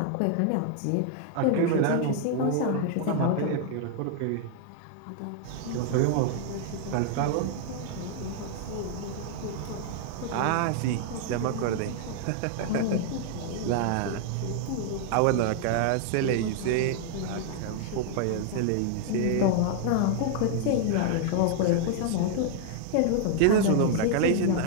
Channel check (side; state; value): both; different; correlation 0.00